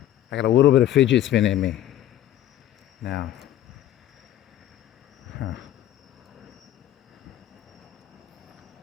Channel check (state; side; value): quieter; right; 12.4 dB